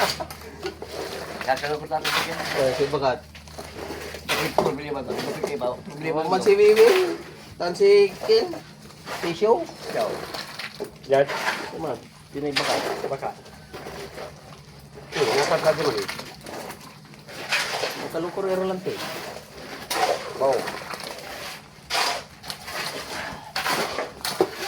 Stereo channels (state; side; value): identical; both; correlation 1.00